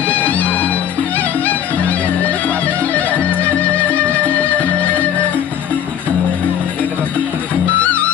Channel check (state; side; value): quieter; right; 9.6 dB